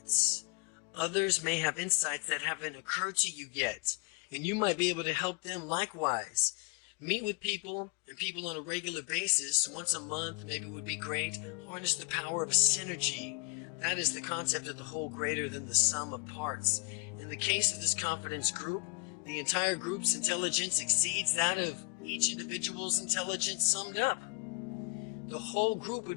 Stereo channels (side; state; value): right; quieter; 31.1 dB